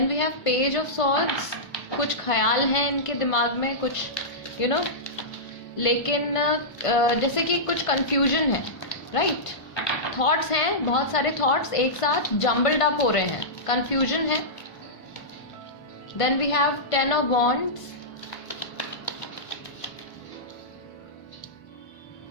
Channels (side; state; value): right; late; 1.5 ms